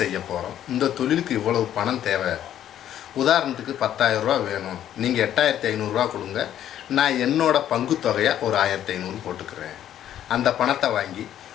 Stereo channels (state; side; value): quieter; right; 11.0 dB